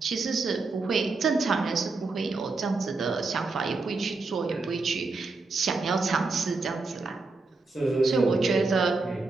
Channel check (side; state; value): left; quieter; 3.8 dB